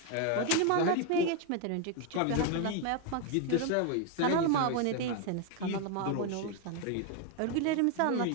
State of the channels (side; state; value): both; different; correlation 0.01